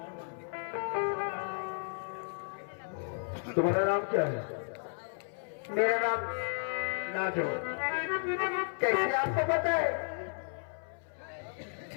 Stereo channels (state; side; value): silent; right; 55 dB below the other